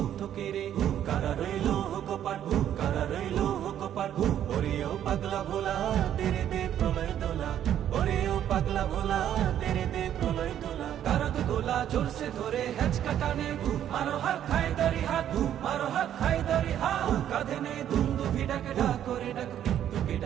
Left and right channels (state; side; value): quieter; left; 10.6 dB